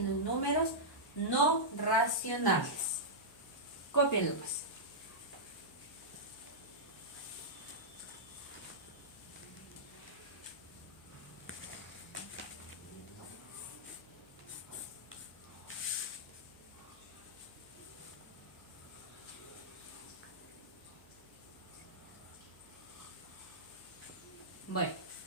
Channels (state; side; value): noise; left; hum, 27 dB below the sound